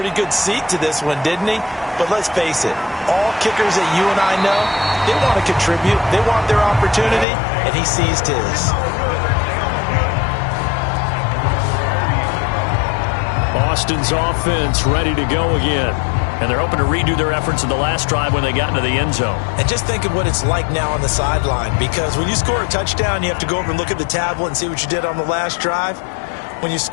good seat to this one, didn't he? But let's face it, all kickers that you and I know, they want to contribute. They want their opportunity, and he seized his. Austin's offense ready to go again. And they're hoping to redo their efforts in the last drive when they got into the end zone. And just think of what it's like now on the sideline, because when you score a touchdown, you have to go over and look at the tablet and see what you did on the last drive. When you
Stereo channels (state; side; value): drops out; right; at 7.2 s